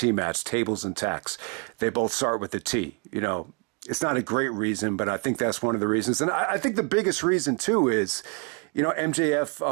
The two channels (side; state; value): left; quieter; 34.5 dB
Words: match, tables and tacks. They both start with a T, It's not a great reason, but I think that's one of the reasons. And I think the biggest reason, too, is, MJF,